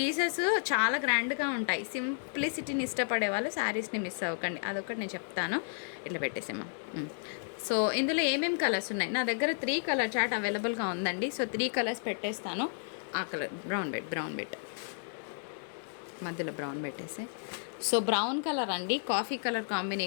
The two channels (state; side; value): silent; right; digital silence